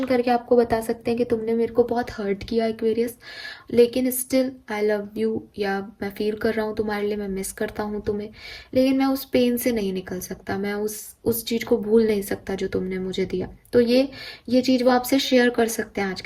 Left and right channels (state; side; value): identical; both; correlation 1.00